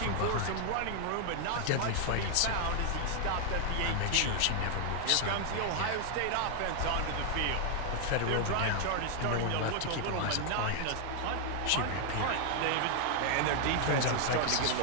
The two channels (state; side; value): different; both; correlation 0.00